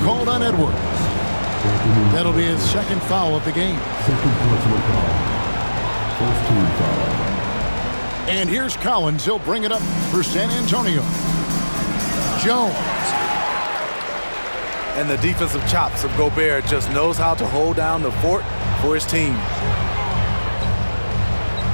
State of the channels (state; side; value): inverted; both; correlation -1.00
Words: called on Edwards. That'll be his second foul of the game. Second personal foul. First team foul. And here's Collins. He'll bring it up for San Antonio. Jones. And the defensive chops of Gobert just knows how to hold down the fort for his team.